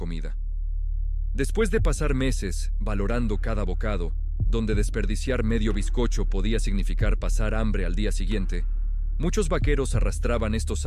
Después de pasar meses valorando cada bocado, donde desperdiciar medio bizcocho podía significar pasar hambre al día siguiente, muchos vaqueros arrastraban estos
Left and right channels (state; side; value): identical; both; correlation 1.00